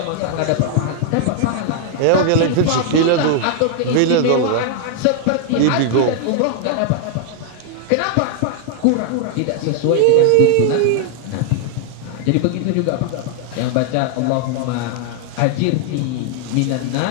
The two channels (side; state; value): both; different; correlation 0.00